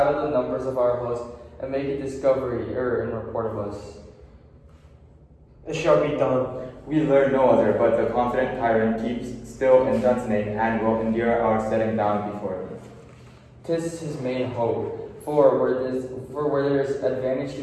the numbers of our host, and make a discovery in report of us. It shall be done. We learn no other, but the confident tyrant keeps still in Dunsnake and will endure our setting down before him. 'Tis his main hope, for where there is advantage to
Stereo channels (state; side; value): identical; both; correlation 1.00